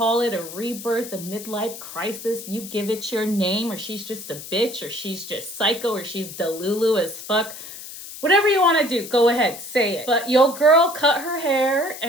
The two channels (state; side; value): noise; left; hiss, 12 dB below the sound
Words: it, a rebirth, a midlife crisis. You give it your name, or she's just a bitch, or she's just psycho, or she's delulu as fuck. Whatever you want to do, go ahead, say it. But your girl cut her hair